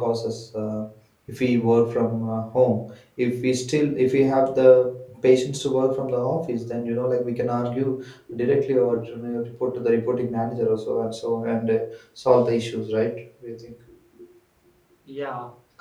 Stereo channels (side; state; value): both; identical; correlation 1.00